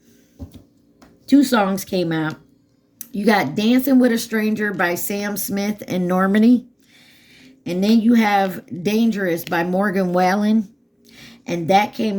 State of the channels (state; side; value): identical; both; correlation 1.00